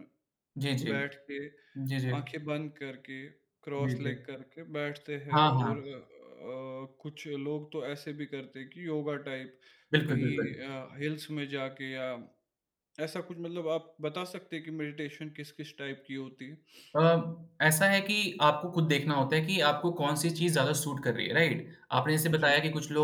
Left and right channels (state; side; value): identical; both; correlation 1.00